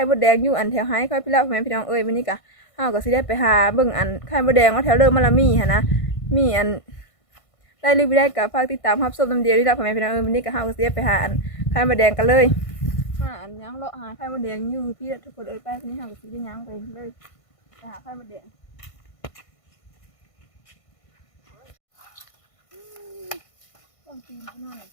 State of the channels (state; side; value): late; right; 1.5 ms